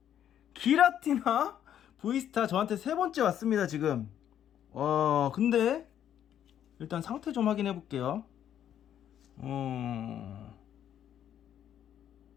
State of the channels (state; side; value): quieter; right; 10.2 dB